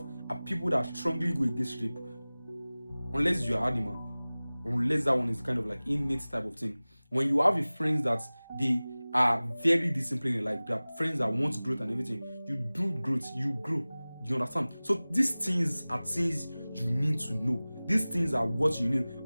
are people that strongly go against rape, unless you are animal, unless that one is kind of like innate type of thing. When you have a friends that they are very disciplined in life, they are friends that want growth and everything, you do growth, you grow. You understand? So these things are things you need to know. These things are what you need.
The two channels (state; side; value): inverted; both; correlation -0.99